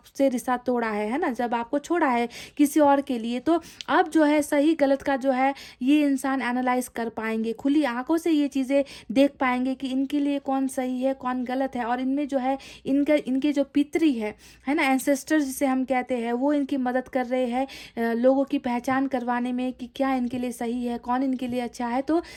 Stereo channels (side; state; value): both; identical; correlation 1.00